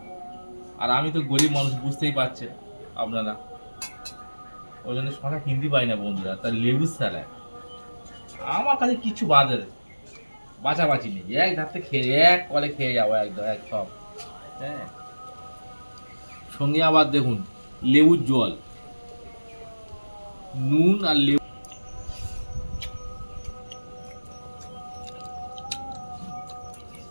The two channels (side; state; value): both; inverted; correlation -1.00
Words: আর আমি তো গরিব মানুষ, বুঝতেই পারছেন আপনারা, ওই জন্য শশা কিনতে পারি না বন্ধুরা। তার লেবুর স্যালাড আমার কাছে কিছু বাঁচাবাচি নেই, এক ধারতে খেয়ে এক কলে খেয়ে যাবো একদম এক সব। হ্যাঁ, সঙ্গে আবার দেখুন লেবুর জল, নুন আর লেবু।